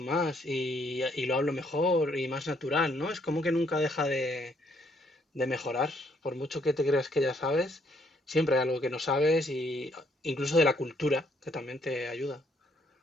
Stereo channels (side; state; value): both; normal; correlation 0.70